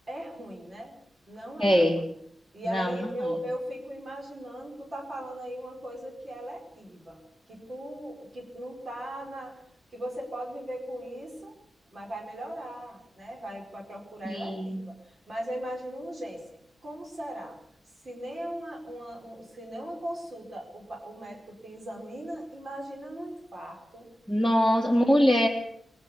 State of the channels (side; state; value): both; normal; correlation 0.93